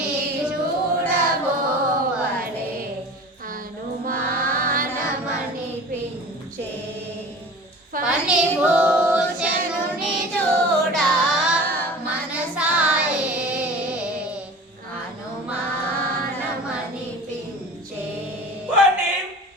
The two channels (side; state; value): both; normal; correlation 0.39